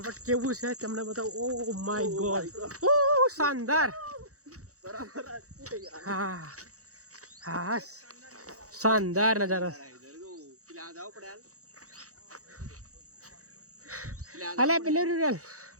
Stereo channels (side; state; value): left; late; 0.65 ms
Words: કેવું છે તમને બતાવું. ઓ માય ગોડ, ઓ શાનદાર. હા હા, શાનદાર નજારો. અલે પેલું રૂરલ